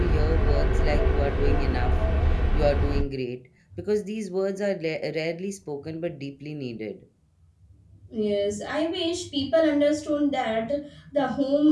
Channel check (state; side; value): identical; both; correlation 1.00